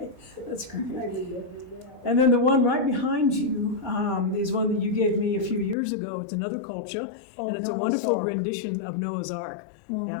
that's great. And then the one right behind you is one that you gave me a few years ago. It's another colcha, and it's a Noah's wonderful Ark. rendition of Noah's Ark.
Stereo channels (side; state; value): right; drops out; at 5.8 s